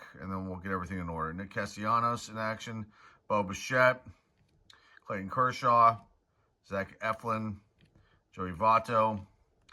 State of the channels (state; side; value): identical; both; correlation 1.00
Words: and then we'll get everything in order. Nick Castellanos in action. Bo Bichette. Clayton Kershaw. Zach Eflin. Joey Votto.